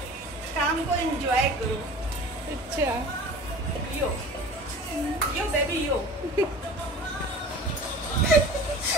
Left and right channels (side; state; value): both; normal; correlation 0.40